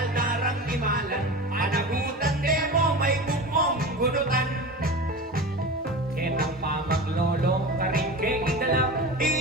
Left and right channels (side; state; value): both; normal; correlation 0.31